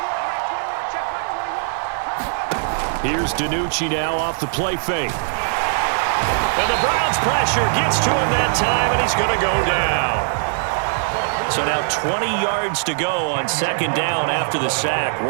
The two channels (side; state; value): left; silent; 65 dB below the other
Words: Here's DiNucci now off the play fake. And the Browns pressure gets to him that time, and he's going to go down. So now 20 yards to go on 2nd down after the sack.